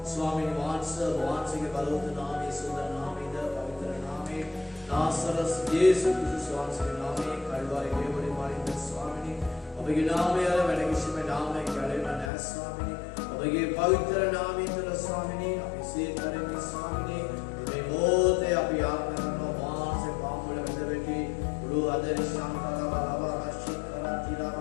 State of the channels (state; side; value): drops out; right; at 12.3 s